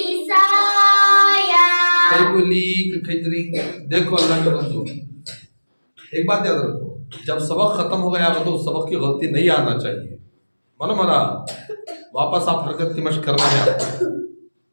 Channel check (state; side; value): inverted; both; correlation -1.00